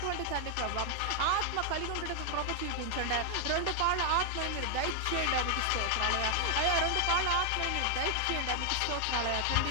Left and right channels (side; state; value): both; different; correlation 0.00